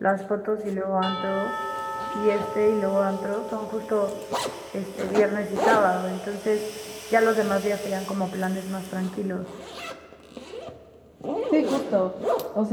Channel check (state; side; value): identical; both; correlation 1.00